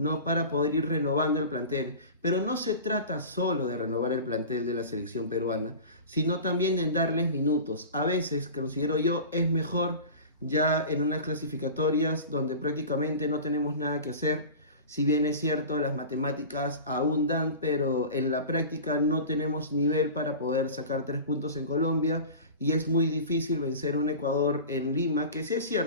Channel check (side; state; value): both; inverted; correlation -0.35